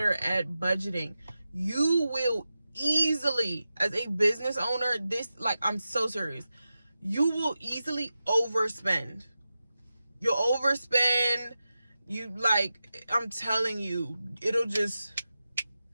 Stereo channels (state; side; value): inverted; both; correlation -0.92